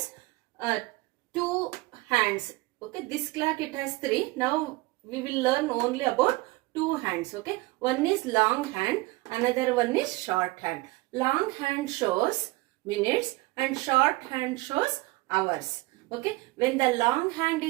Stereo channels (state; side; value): quieter; left; 21.9 dB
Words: two hands. Okay. This clock it has three. Now we will learn only about two hands. Okay. One is long hand. Another one is short hand. Long hand shows minutes and short hand shows hours. Okay. When the long hand